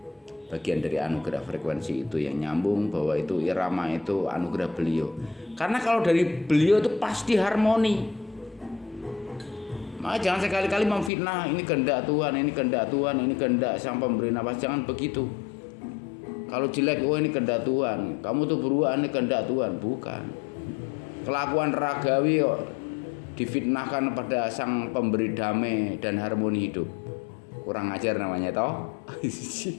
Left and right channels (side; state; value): right; drops out; at 11.1 s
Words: dari anugerah frekuensi itu yang nyambung, bahwa itu irama itu anugerah beliau. Karena kalau dari beliau itu pasti harmoni. Maka jangan sekali-kali memfitnah, ini kehendak Tuhan, ini kehendak Tuhan, ini kehendak Sang Pemberi Nafas. Jangan begitu. Kalau jelek, oh ini kehendak Tuhan, kamu tuh beruang, ini kehendak Tuhan. Bukan. Kelakuan ragawi kok difitnahkan pada Sang Pemberi damai dan harmoni hidup. Kurang ajar namanya toh.